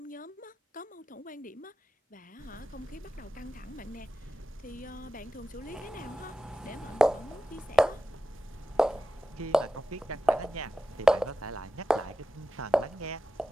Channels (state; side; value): normal; both; correlation 0.92